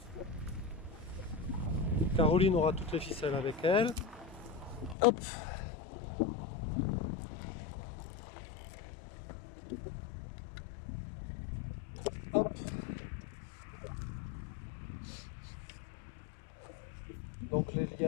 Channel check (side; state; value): right; drops out; at 5.0 s